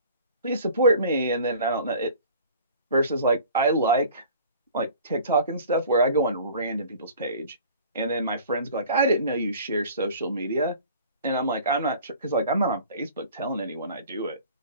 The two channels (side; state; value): both; inverted; correlation -0.46